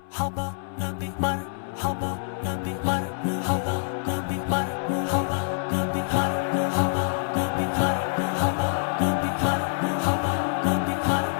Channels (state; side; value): silent; right; 61 dB below the other